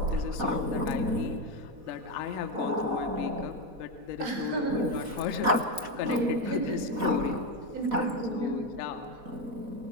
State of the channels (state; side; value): late; left; 4.1 ms